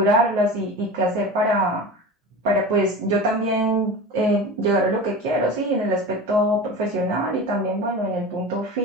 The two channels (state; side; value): normal; both; correlation 0.31